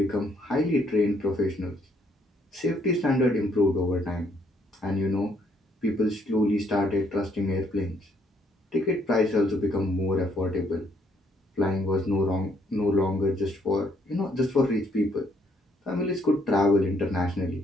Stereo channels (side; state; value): both; normal; correlation 0.69